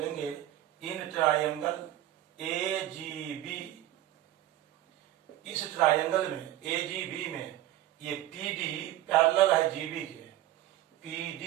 In triangle A G B, इस ट्रायंगल में ए जी बी में ये पीडी पैरेलल है जीबी के,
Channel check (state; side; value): quieter; left; 14.0 dB